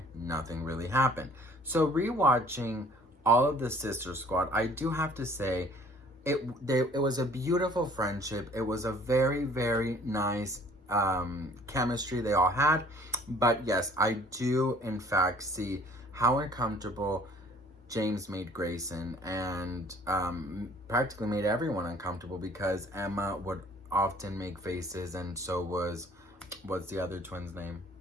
nothing really happened. So rewatching all of the Sister Squad, I do have to say, it was a beautiful friendship. It was a very, very nice chemistry they all had. But yes, I do in fact see how uncomfortable James made Grayson, and practically made everyone uncomfortable, because Emma would often make faces, and so what's the other twin's name?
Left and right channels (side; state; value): both; normal; correlation 0.54